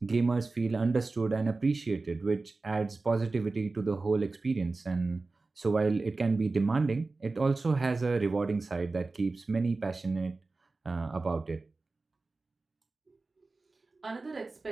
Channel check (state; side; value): quieter; left; 3.6 dB